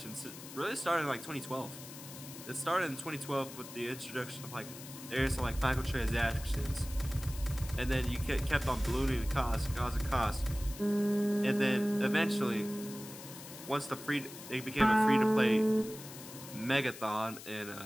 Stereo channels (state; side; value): noise; left; hiss, 14 dB below the sound